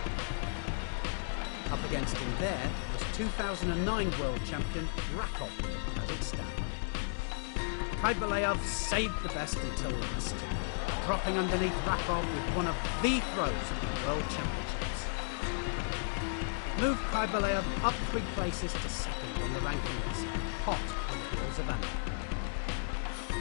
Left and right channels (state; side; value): silent; right; digital silence